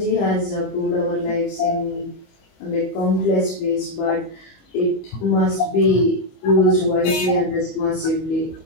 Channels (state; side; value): late; right; 20 ms